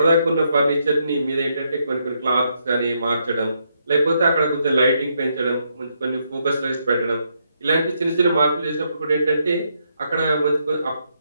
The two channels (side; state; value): both; inverted; correlation -0.77